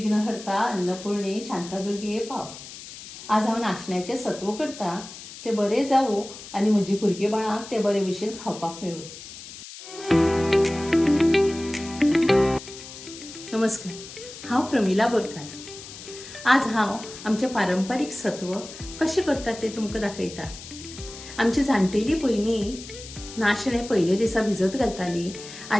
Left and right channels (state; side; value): noise; left; hiss, 14 dB below the sound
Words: अन्नपूर्णे शांतादुर्गे पाव. आज हांव नाचण्याचें सत्व करता ते बरें जावं आनी म्हजी भुरगीं बाळांक ते बरे भशेन खावपाक मेळूं. नमस्कार, हांव प्रमिला बोरकार. आज हांव आमचें पारंपारीक सत्व कशें करतात तें तुमकां दाखयता. आमची जाणटेली पयलीं नाशणें पयले दिसा भिजत घालताली